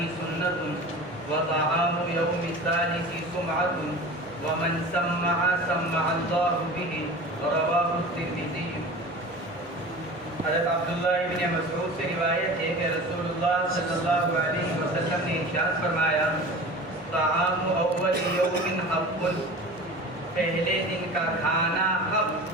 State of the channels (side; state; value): both; normal; correlation 0.36